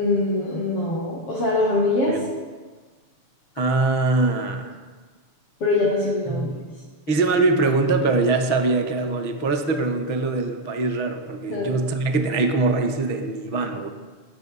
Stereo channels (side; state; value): right; late; 6.9 ms